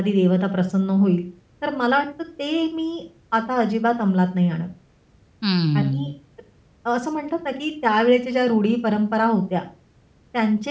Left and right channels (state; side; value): identical; both; correlation 1.00